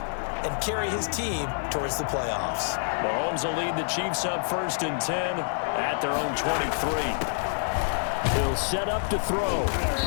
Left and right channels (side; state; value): right; silent; digital silence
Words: and carry his team towards the playoffs? Mahomes will lead the Chiefs up 1st and 10 at their own 23. He'll set up to throw.